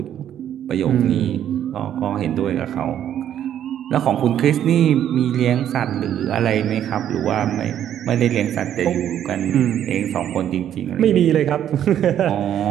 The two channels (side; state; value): left; quieter; 10.4 dB